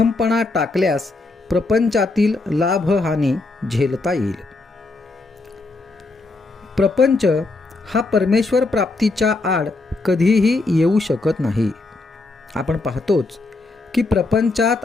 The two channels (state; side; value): quieter; right; 3.3 dB